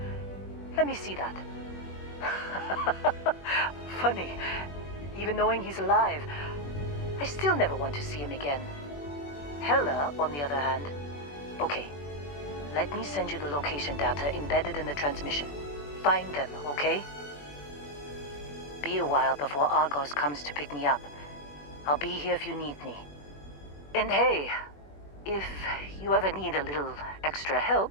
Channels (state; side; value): late; right; 21 ms